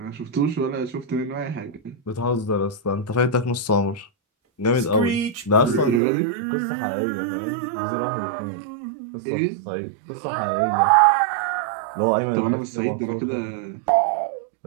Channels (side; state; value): left; drops out; at 6.0 s